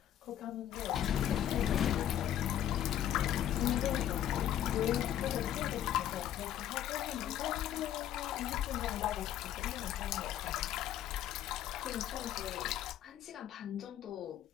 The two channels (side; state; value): right; quieter; 11.3 dB